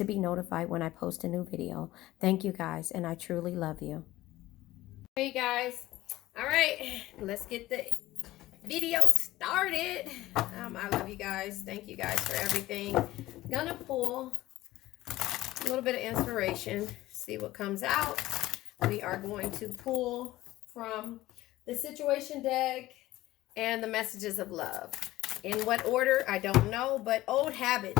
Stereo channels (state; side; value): quieter; right; 16.6 dB